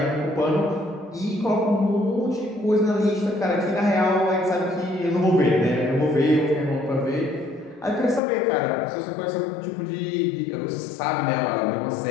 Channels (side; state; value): right; drops out; at 8.2 s